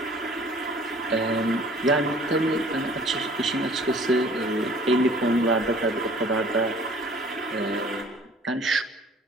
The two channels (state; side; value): normal; both; correlation 0.52